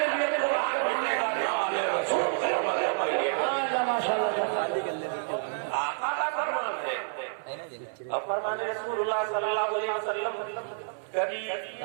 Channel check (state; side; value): silent; left; 59 dB below the other